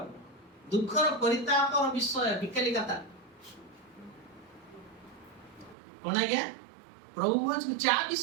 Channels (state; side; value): drops out; left; at 5.8 s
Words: ଦୁଃଖର ପରିତାପର ବିଷୟ, ବିକାଲି କଥା। କଣ ଆଜ୍ଞା? ପ୍ରଭୁ ଭୋଜକୁ ଚା